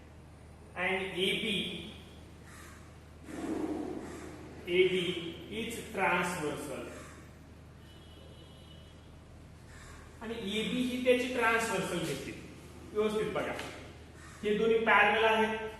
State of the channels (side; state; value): both; identical; correlation 1.00